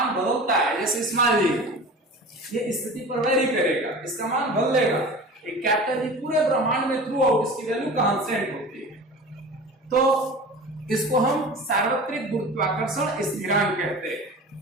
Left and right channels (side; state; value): both; normal; correlation 0.36